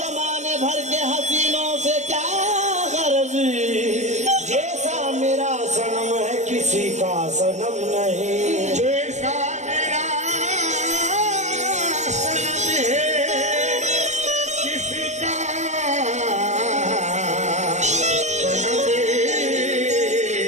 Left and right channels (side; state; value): left; late; 0.34 ms